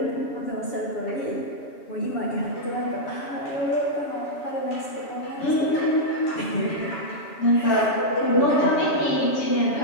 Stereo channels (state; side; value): late; right; 7.1 ms